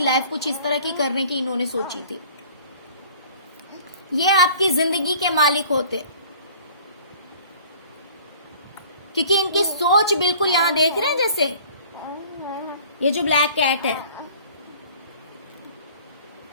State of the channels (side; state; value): both; inverted; correlation -0.49